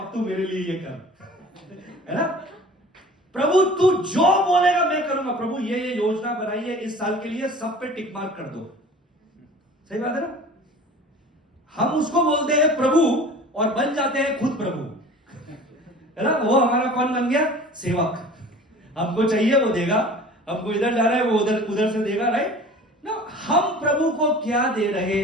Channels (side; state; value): both; normal; correlation 0.43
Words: तू मेरे लिए ये कर, है ना। प्रभु तू जो बोलेगा मैं करूंगा, प्रभु ये योजना बनाई है इस साल के लिए, सब पे टिक मार्क कर दो। सही बात है ना। हम उसको बोलते हैं प्रभु और बन जाते हैं खुद प्रभु, है ना। वो हमारा कौन बन गया? सेवक। हमको चाहिए वो देगा, हमको इधर जा रहा है वो उधर से देगा, राइट ना। हम प्रभु को क्या दे रहे